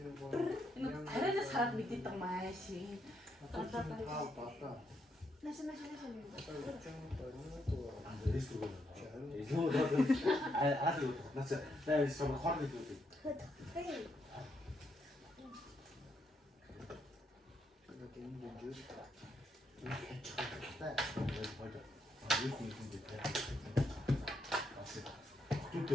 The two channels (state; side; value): normal; both; correlation 0.78